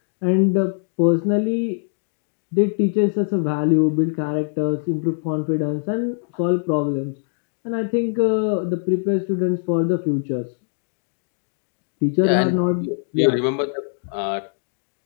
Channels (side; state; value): right; silent; digital silence